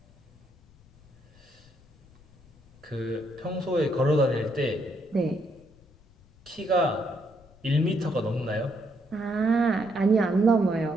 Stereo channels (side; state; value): left; noise; rumble, 28 dB below the sound